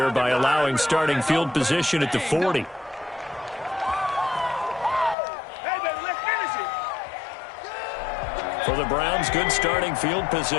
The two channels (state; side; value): drops out; right; at 5.2 s